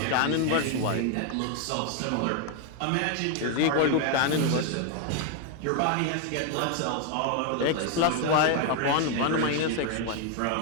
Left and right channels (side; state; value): both; different; correlation 0.00